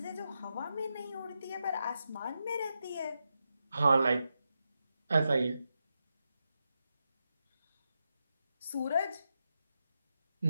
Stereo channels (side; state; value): both; inverted; correlation -0.86